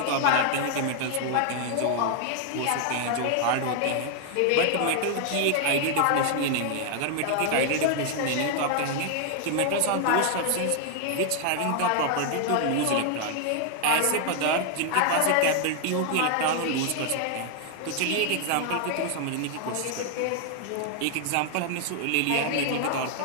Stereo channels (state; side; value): different; both; correlation 0.00